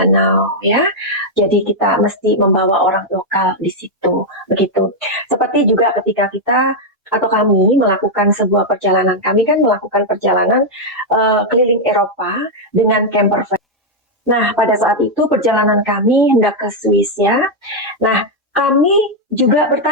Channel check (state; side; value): normal; both; correlation -0.01